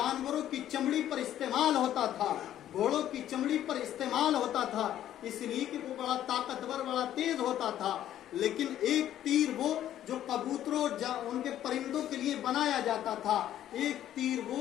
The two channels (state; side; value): quieter; right; 11.8 dB